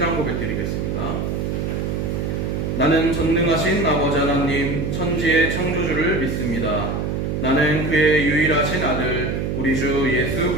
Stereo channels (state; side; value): noise; right; hum, 1 dB below the sound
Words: 고백 드리겠습니다. 나는 전능하신 아버지 하나님 천지의 창조주를 믿습니다. 나는 그의 유일하신 아들 우리 주 예수